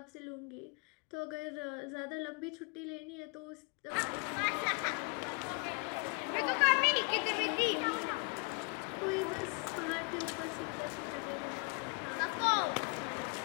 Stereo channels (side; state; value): right; quieter; 35.4 dB